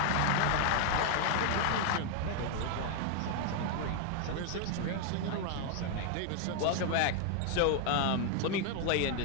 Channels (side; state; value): both; different; correlation 0.00